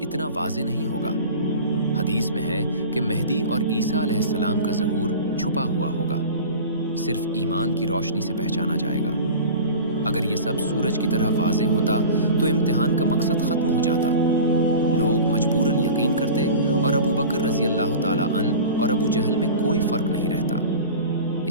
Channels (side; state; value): both; inverted; correlation -0.36